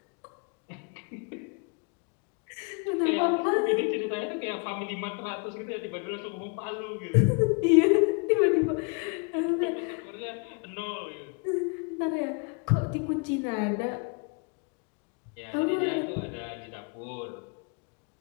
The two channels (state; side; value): quieter; right; 35.4 dB